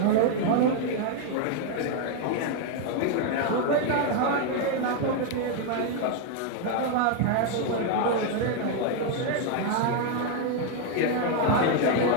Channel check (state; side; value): different; both; correlation 0.01